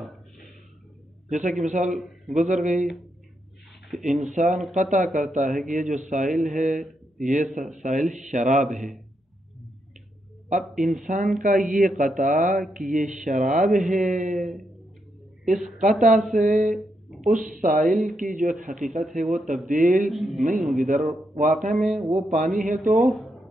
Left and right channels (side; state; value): both; normal; correlation 0.81